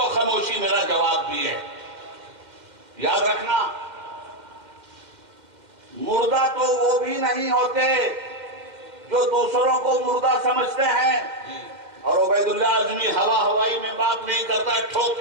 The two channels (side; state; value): left; late; 2.1 ms